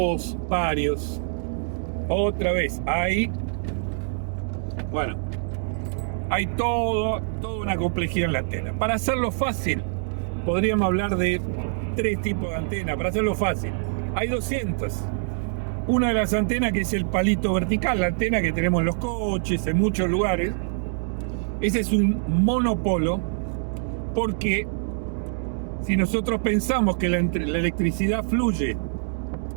varios. Otra vez, hay toda una complejidad en la antena. Para hacerlo fácil, podríamos hablar de 3 tipos de antenas. Para hacerlo fácil, hay 200. Una de las antenas, que es el palito vertical, la antena que tenemos en los coches, en muchos lugares. Ese es un monopolo, porque si nosotros pensamos que la electricidad fluye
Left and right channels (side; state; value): left; silent; digital silence